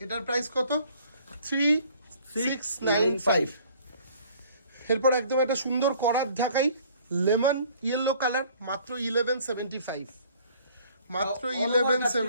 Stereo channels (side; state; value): both; inverted; correlation -0.55